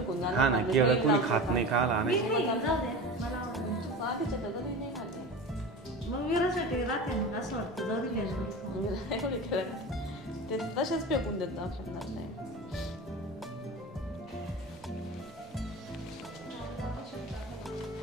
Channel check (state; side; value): normal; both; correlation 0.31